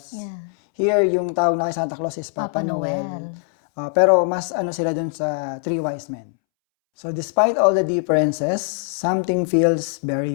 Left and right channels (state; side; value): silent; right; 65 dB below the other